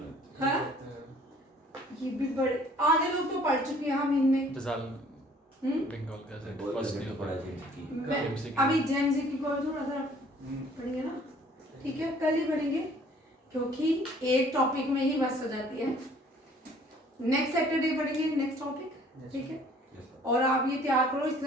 हाँ ये भी बड़े आधे लोग तो पढ़ चुके हैं हम इनमें। फिजाल हम्म? बंगाल का से बहुत फर्स्ट लेवल ईयर पढ़ा है जी। मैं MCQ अभी जेमजी की कोई थोड़ा सा पढ़ेंगे ना, ठीक है, कल ही पढ़ेंगे क्योंकि एक टॉपिक में ही बस हो जाती है। नेक्स्ट सैटरडे पढ़ेंगे नेक्स्ट टॉपिक, ठीक है। Yes, sir. और आप ये तैयार करो, इसके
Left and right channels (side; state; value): both; normal; correlation 0.56